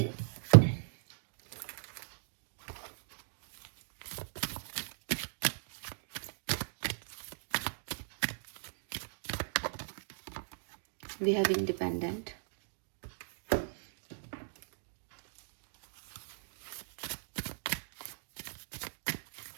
we have independent,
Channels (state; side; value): silent; left; digital silence